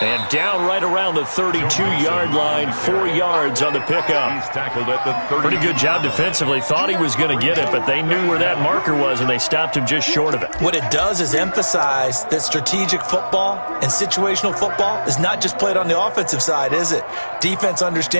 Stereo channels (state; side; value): inverted; both; correlation -1.00